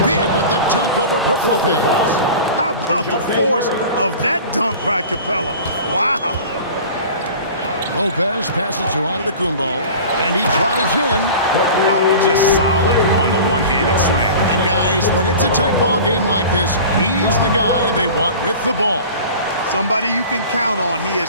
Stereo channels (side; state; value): both; inverted; correlation -0.38